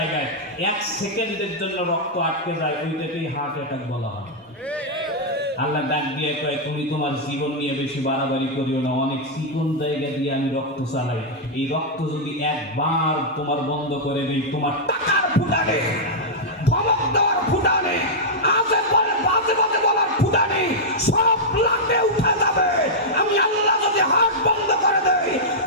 1 সেকেন্ডের জন্য রক্ত আটকে যায়, ওইটাকেই হার্ট অ্যাটাক বলা হয়। আল্লাহ ডাক দিয়ে কয় তুমি তোমার জীবন নিয়ে বেশি বাড়াবাড়ি করিও না, অনেক চিকন জায়গা দিয়ে আমি রক্ত চালাই। এই রক্ত যদি একবার তোমার বন্ধ করে দিই, তোমার টাকার ফুটানে, ধমক দেওয়ার ফুটানে, আজে বাজে বাজে বলার ফুটানে সব লাটে উঠে যাবে। আমি আল্লাহ যদি হাত বন্ধ করে দেই,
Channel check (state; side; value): normal; both; correlation -0.07